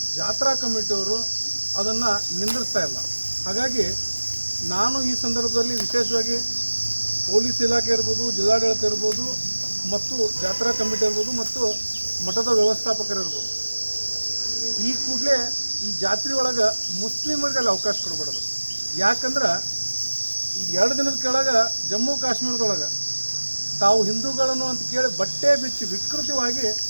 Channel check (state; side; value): inverted; both; correlation -1.00